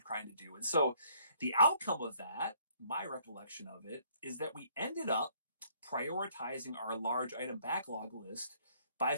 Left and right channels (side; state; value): both; inverted; correlation -0.63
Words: trying to do. And so the outcome of that, my recollection of it, is that we ended up prioritizing our large item backlog list by